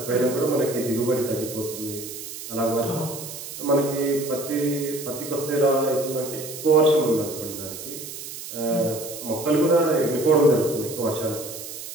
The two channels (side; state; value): right; noise; hiss, 10 dB below the sound